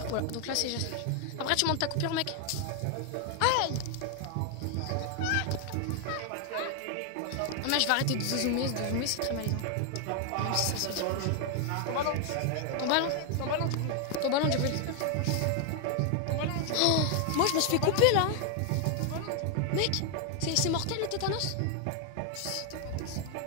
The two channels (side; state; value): both; different; correlation 0.00